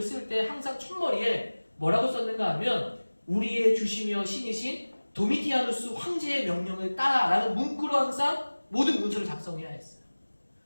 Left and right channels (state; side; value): inverted; both; correlation -1.00